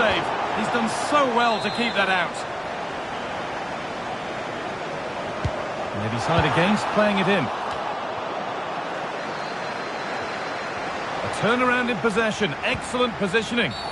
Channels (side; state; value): both; identical; correlation 1.00